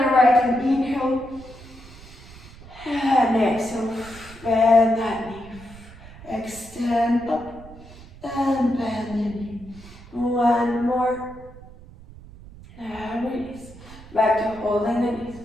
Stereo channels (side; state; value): right; noise; rumble, 19 dB below the sound